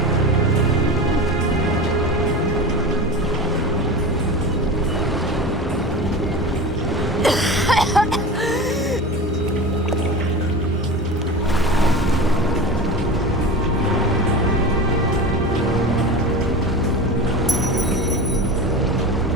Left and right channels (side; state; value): both; normal; correlation 0.30